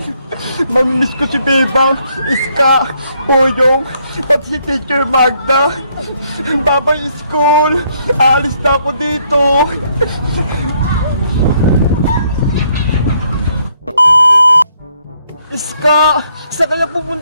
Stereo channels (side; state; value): both; inverted; correlation -0.71